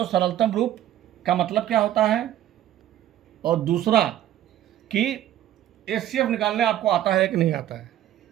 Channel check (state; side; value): quieter; left; 12.4 dB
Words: सरलतम रूप का मतलब क्या होता है, और दूसरा कि HCF निकालने आपको आता है कि नहीं आता है,